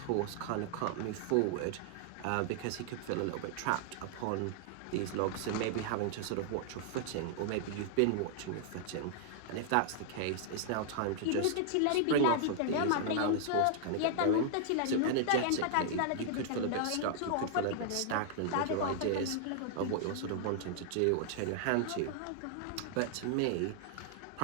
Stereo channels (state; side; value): different; both; correlation -0.01